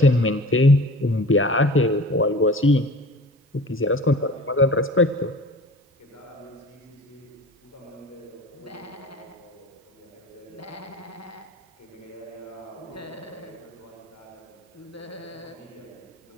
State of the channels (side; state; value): both; normal; correlation 0.40